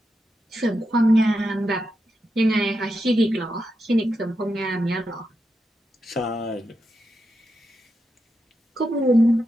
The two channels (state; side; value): normal; both; correlation 0.86